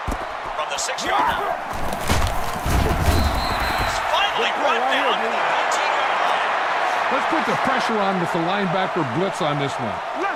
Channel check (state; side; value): identical; both; correlation 1.00